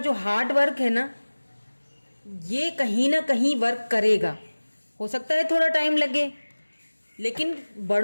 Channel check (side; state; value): both; inverted; correlation -1.00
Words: हार्ड वर्क है ना, ये कहीं ना कहीं वर्क करेगा। हो सकता है थोड़ा टाइम लगे, लेकिन